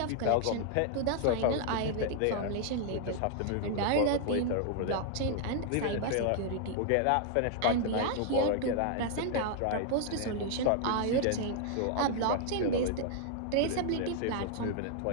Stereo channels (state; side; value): different; both; correlation -0.01